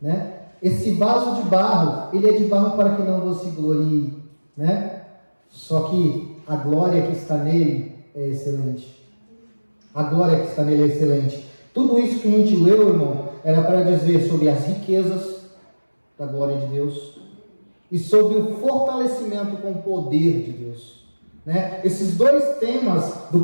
Esse vaso de barro, ele é de barro para que não você glorie, né? Só que a glória que está nele é excelente. A glória que está nele é excelente. Tudo isso que a gente leu, irmão, era para dizer sobre as riquezas da glória de Deus e sobre o fortalecimento com o poder de Deus, né? Esses dois temas, do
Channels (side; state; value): both; inverted; correlation -1.00